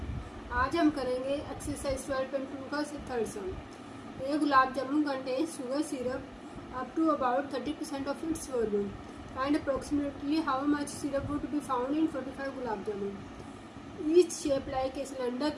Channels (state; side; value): identical; both; correlation 1.00